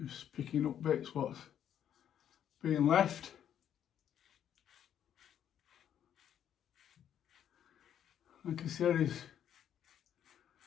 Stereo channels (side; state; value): right; quieter; 9.8 dB